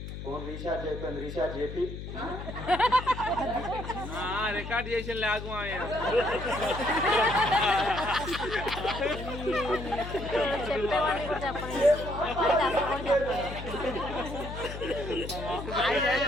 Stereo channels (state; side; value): noise; left; hum, 8 dB below the sound